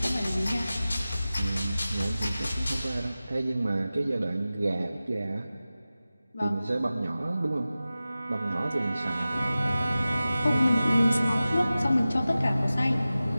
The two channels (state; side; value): inverted; both; correlation -0.96